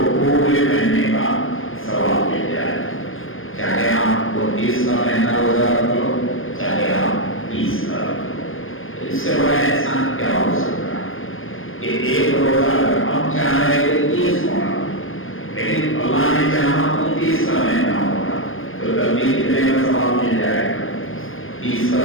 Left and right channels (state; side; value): late; right; 0.59 ms